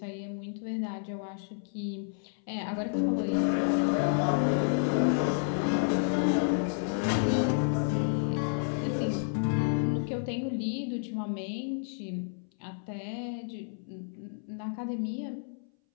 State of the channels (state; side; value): silent; right; 57 dB below the other